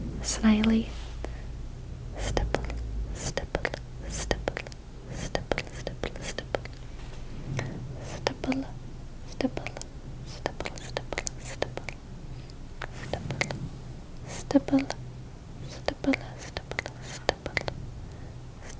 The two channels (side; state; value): both; identical; correlation 1.00